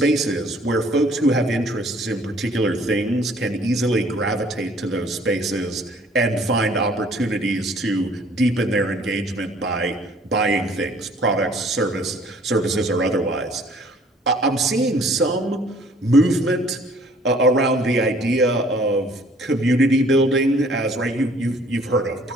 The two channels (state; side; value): normal; both; correlation 0.57